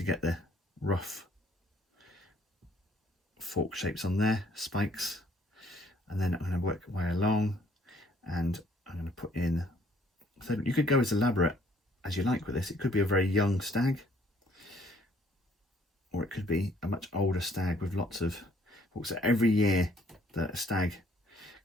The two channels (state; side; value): normal; both; correlation 0.62